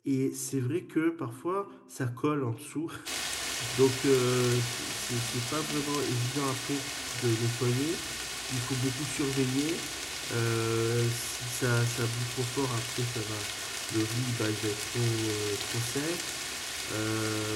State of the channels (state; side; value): identical; both; correlation 1.00